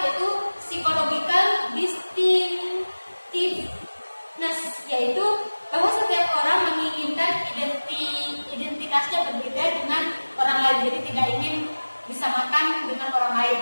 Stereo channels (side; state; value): both; inverted; correlation -1.00